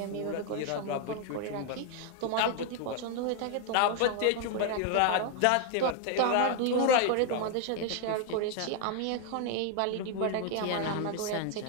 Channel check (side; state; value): both; different; correlation 0.00